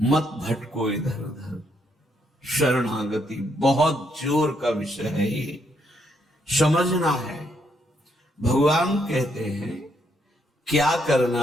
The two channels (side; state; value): both; normal; correlation 0.75